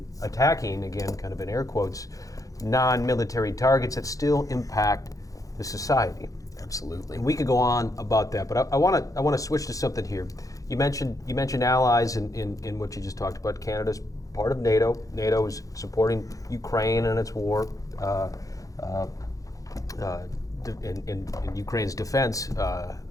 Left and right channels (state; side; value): late; right; 0.17 ms